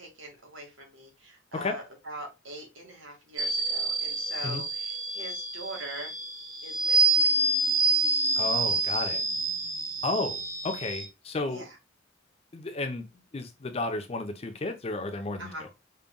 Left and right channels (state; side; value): normal; both; correlation 0.04